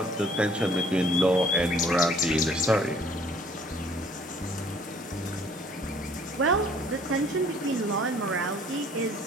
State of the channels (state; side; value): normal; both; correlation 0.57